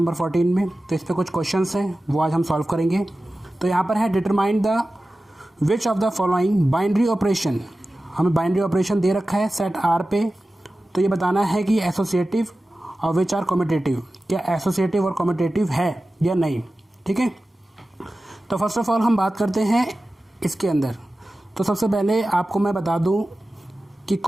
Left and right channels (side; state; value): both; normal; correlation 0.95